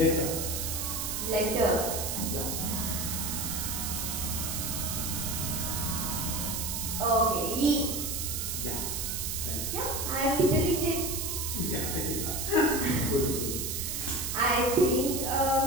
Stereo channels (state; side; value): noise; right; hiss, 2 dB below the sound